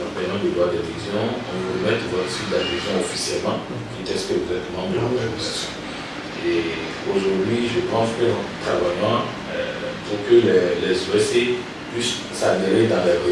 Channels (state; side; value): identical; both; correlation 1.00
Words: paiement du droit d'adhésion, on vous remet votre suite d'adhésion officiellement, qui teste que vous êtes membre de l'organisation. Et aujourd'hui, je pense que nous travaillons pour que les OSC puissent s'adhérer dans les